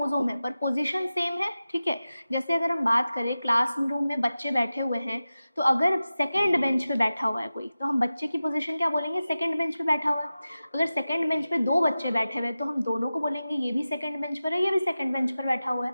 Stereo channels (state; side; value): inverted; both; correlation -0.94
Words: है पर पोजीशन सेम है, ठीक है। जैसे अगर हम बात करें क्लासरूम में बच्चे बैठे हुए हैं, तो अगर सेकंड बेंच पे बैठा हुआ है कोई, तो हम बच्चे की पोजीशन क्या बोलेंगे, सेकंड बेंच पे बैठा हुआ है। अगर सेकंड बेंच पे 2 बच्चे बैठे हुए हैं तो हम दोनों को बोलेंगे ये भी सेकंड बेंच पर है, ये भी सेकंड बेंच पर बैठा हुआ है,